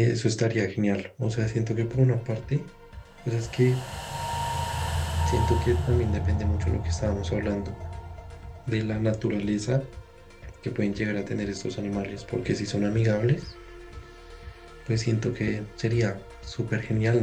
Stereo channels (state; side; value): identical; both; correlation 1.00